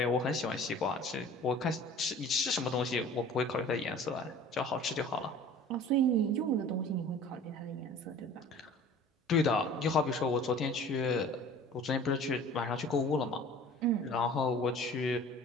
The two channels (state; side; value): normal; both; correlation 0.45